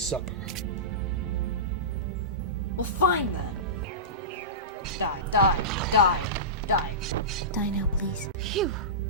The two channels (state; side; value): normal; both; correlation -0.19